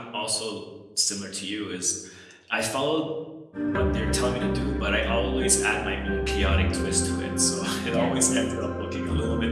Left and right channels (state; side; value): identical; both; correlation 1.00